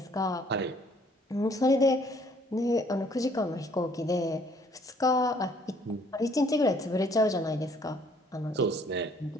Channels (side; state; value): both; normal; correlation 0.61